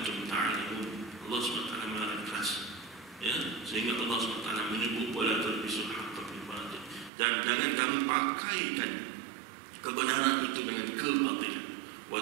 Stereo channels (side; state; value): left; drops out; at 7.1 s